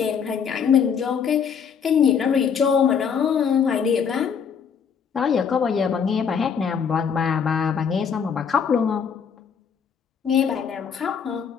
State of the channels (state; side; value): quieter; right; 6.9 dB